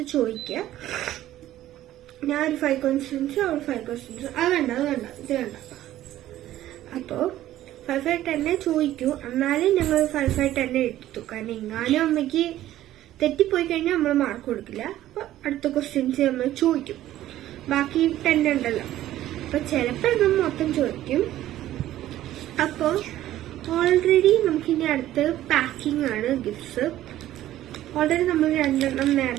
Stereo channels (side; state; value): left; quieter; 13.7 dB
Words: ചോദിക്കുക. ഞാൻ ഒരു 5 questions, അവൾ 5 questions. അത് വേണ്ട ഇത് വേണ്ട. അപ്പോൾ 5 10 ചോദിക്കൂ. എന്നാലും ഞങ്ങൾ 5 10 എടുത്തു. കാരണം എങ്ങാനും അമ്മയ്ക്ക് തെറ്റിപ്പോയി കഴിഞ്ഞാൽ നമ്മൾ മാർക്ക് കൊടുക്കില്ല. അപ്പോൾ അടുത്ത ക്വസ്റ്റ്യൻസ് നമ്മൾ ചോദിക്കും. ബാക്കി 10 ഉണ്ടല്ലോ, അപ്പോൾ ചിലപ്പോൾ നമ്മൾ മൊത്തം ചോദിക്കും. അപ്പോൾ ഓൾറെഡി നമുക്കിനി അടുത്ത് പാക്കിംഗ് ആണ്, ഗിഫ്റ്റ്സ്. ഓൾറെഡി നമ്മൾ 2